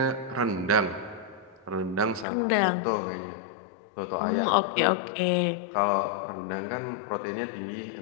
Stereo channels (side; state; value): right; drops out; at 2.2 s